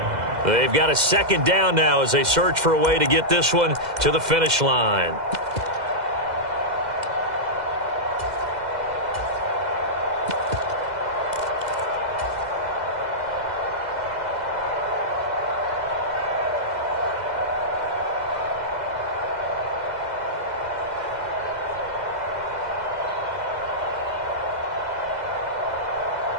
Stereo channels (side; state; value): left; late; 2.0 ms